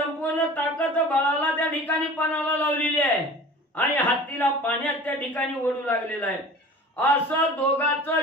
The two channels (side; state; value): both; normal; correlation 0.40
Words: ताकद बळाला त्या ठिकाणी पणाला लावलेली आहे आणि हत्तीला पाण्यात त्या ठिकाणी ओढू लागलेला आहे. असं